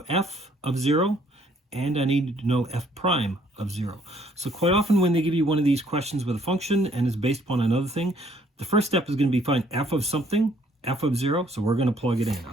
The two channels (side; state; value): both; normal; correlation 0.64